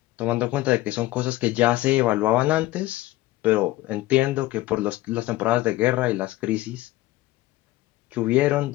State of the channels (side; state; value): right; quieter; 17.3 dB